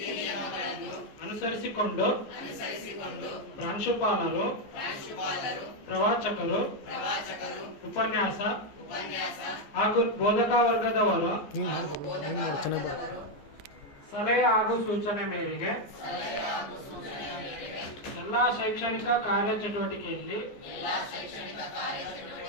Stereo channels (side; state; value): right; late; 14 ms